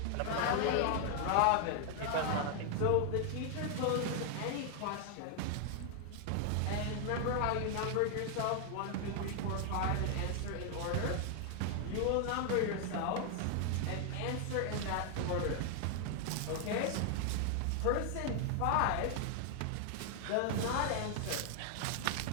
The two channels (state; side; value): different; both; correlation 0.00